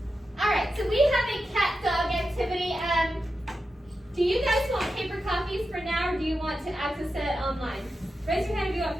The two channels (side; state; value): both; normal; correlation 0.90